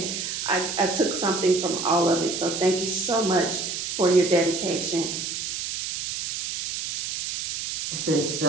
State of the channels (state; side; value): noise; right; hiss, 4 dB below the sound